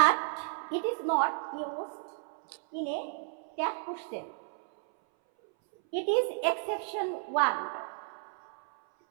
it is not used in a tag question. It is exception 1.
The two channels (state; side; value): silent; left; 56 dB below the other